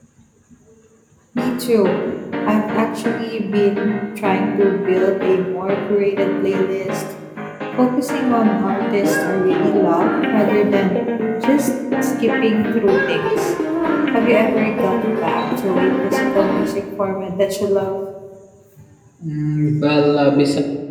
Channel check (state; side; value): identical; both; correlation 1.00